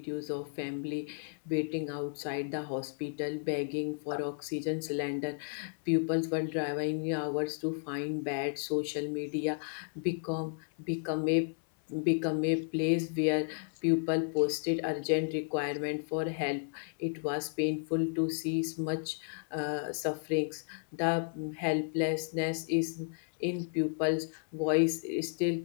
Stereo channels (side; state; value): right; silent; 56 dB below the other